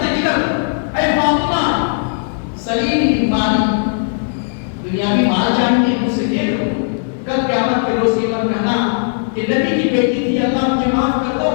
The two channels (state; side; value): silent; right; digital silence